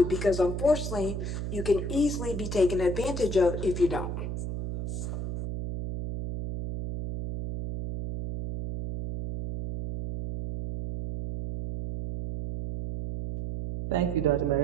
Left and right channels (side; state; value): right; noise; hum, 4 dB below the sound